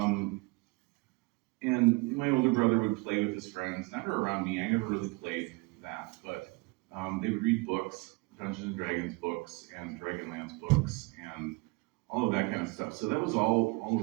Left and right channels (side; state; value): left; quieter; 26.6 dB